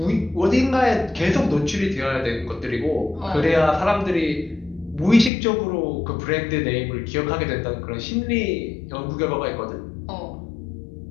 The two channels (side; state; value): right; drops out; at 5.3 s